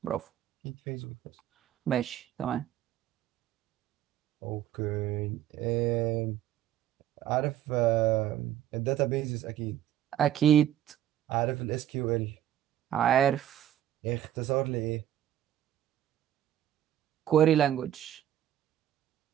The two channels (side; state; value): left; quieter; 11.5 dB